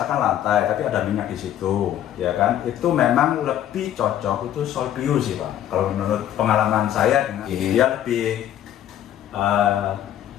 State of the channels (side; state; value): right; quieter; 11.4 dB